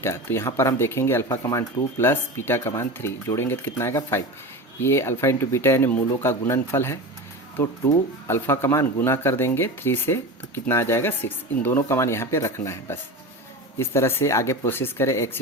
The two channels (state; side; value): normal; both; correlation 0.27